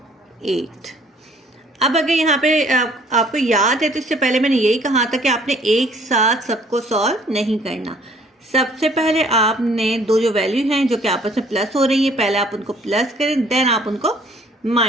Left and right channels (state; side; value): normal; both; correlation 0.58